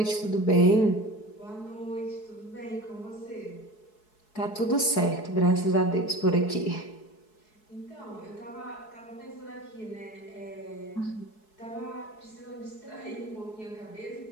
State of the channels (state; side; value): late; right; 4.7 ms